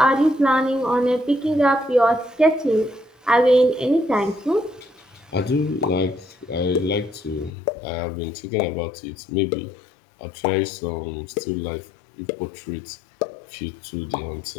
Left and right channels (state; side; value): drops out; right; at 7.5 s